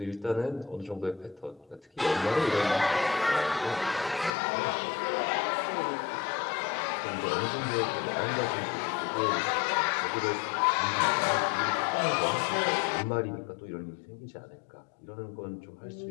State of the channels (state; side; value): drops out; right; at 4.3 s